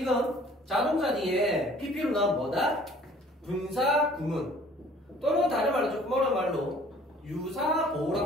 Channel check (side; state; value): both; normal; correlation 0.54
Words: 자동사 뒤에 PP로 나온 뭐다? 분사 구문 또는 다른 말로 조금 어려운 말로